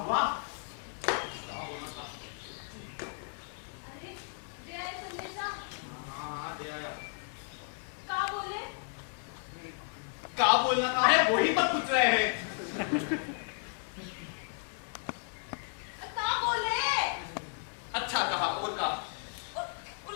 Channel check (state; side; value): silent; right; 55 dB below the other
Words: अरे दे आए संदेशा। हाँ दे आया। का बोले? क्या बोलना था? अरे वही पर पूछ रहे हैं। का बोले? अच्छा कहा, और कहा? वो